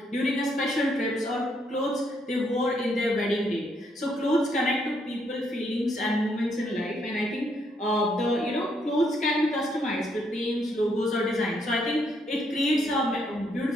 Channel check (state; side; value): normal; both; correlation 0.73